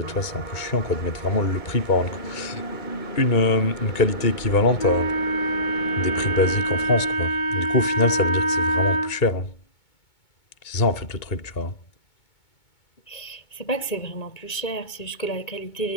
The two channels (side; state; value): right; late; 2.2 ms